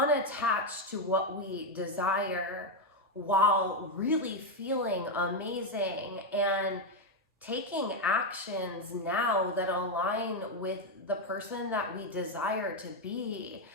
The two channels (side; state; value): both; normal; correlation 0.04